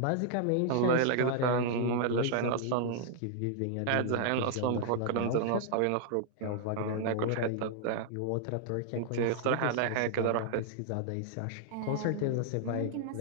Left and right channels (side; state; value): both; different; correlation 0.00